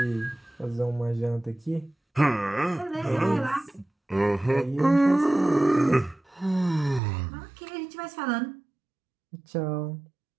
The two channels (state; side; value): drops out; left; at 7.0 s